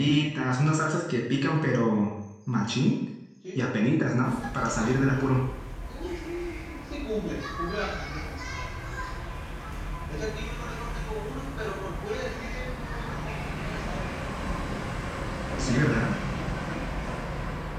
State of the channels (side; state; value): both; identical; correlation 1.00